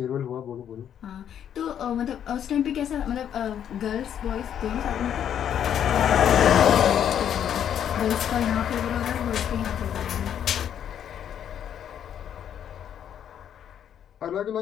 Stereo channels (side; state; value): right; quieter; 9.4 dB